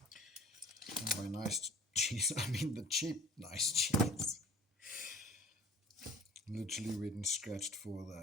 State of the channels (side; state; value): both; normal; correlation 0.47